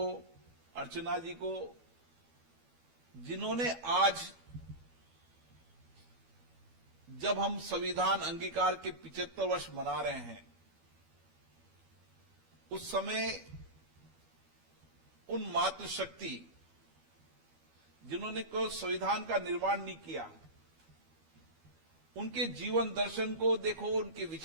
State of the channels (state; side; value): late; left; 12 ms